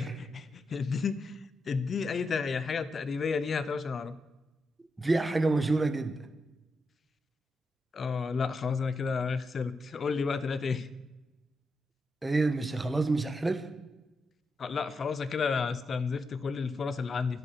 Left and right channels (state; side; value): normal; both; correlation 0.85